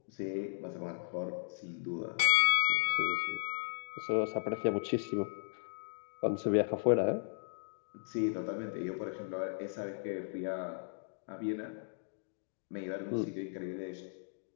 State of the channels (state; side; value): silent; right; digital silence